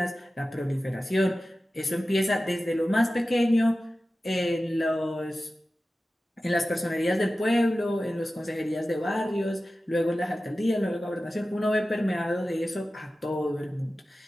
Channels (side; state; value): both; normal; correlation 0.95